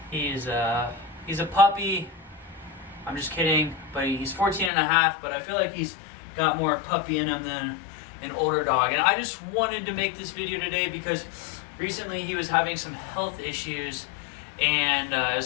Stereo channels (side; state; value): right; drops out; at 4.7 s